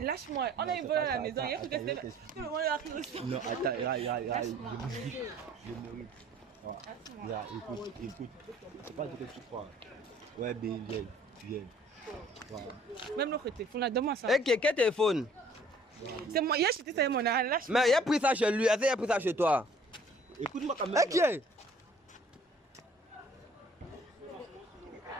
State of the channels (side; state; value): both; normal; correlation 0.55